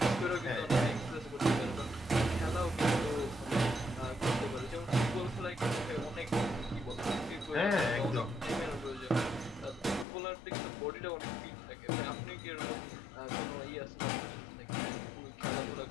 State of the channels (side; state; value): right; drops out; at 10.1 s